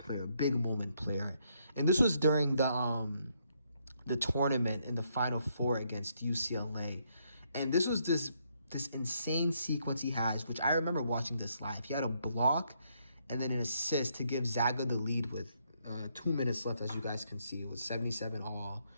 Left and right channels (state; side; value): inverted; both; correlation -0.74